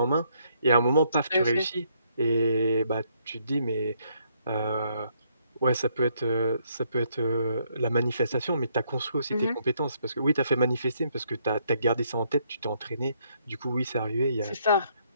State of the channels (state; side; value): inverted; both; correlation -0.71